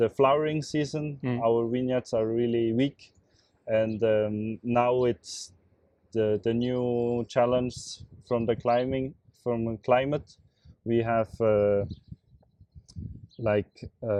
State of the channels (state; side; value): identical; both; correlation 1.00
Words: flowering season. Our vineyards are really weak, and now it's the new challenge from the climate. We have